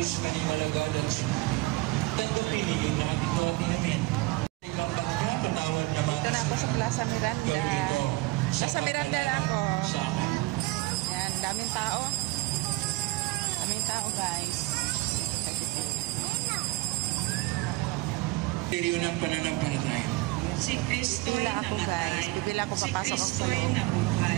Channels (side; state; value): left; quieter; 20.9 dB